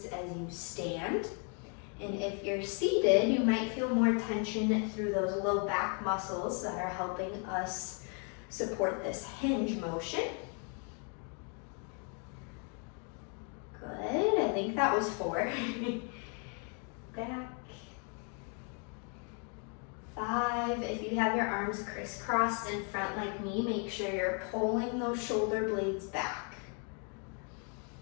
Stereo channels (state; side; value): quieter; right; 39.4 dB